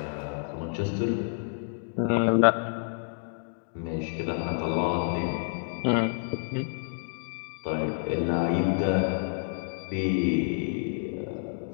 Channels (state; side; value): silent; right; digital silence